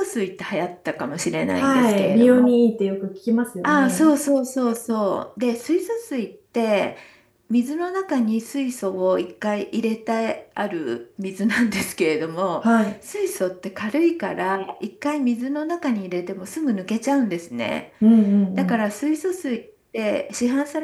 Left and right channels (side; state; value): both; identical; correlation 1.00